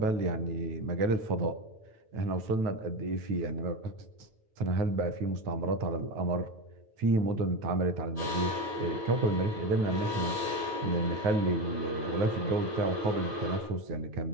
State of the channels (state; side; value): late; left; 9.2 ms